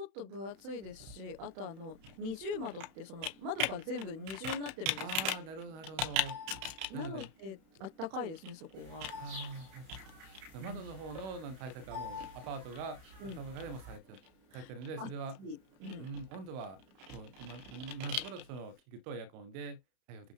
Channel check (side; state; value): left; late; 31 ms